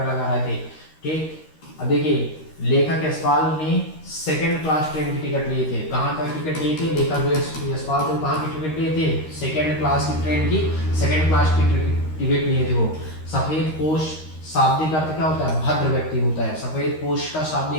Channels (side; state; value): right; late; 13 ms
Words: लगा रहे थे, ठीक। अब देखिए लेखक यशपाल ने सेकंड क्लास ट्रेन की टिकट लिए थे। कहाँ का टिकट लिए थे, लेखक जो यशपाल थे कहाँ की टिकट लिए थे, सेकंड क्लास की ट्रेन की सेकंड क्लास की टिकट लिए थे वो। सफेद पोश शाब्दिक अर्थ क्या होता है, भद्र व्यक्ति होता है। सफेद पोश का